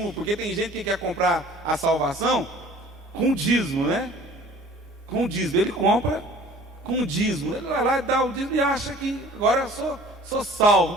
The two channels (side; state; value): both; normal; correlation 0.49